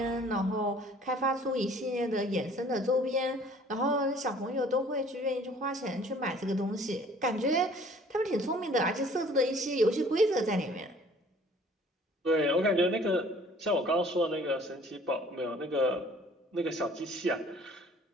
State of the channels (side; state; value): both; normal; correlation 0.53